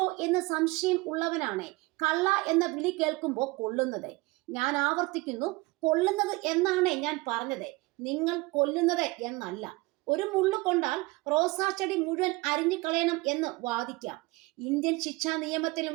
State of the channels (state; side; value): quieter; left; 23.4 dB